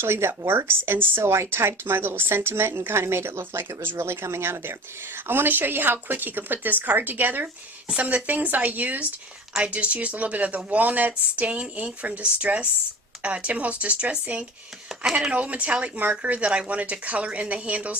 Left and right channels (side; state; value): both; normal; correlation 0.36